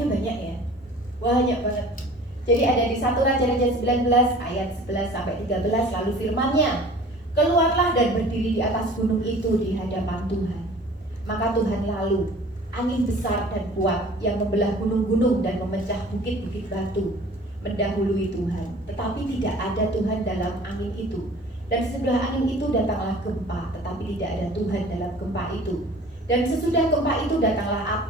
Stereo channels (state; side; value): normal; both; correlation 0.46